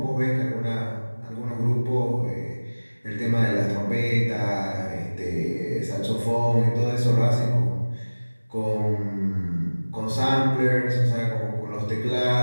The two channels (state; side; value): inverted; both; correlation -1.00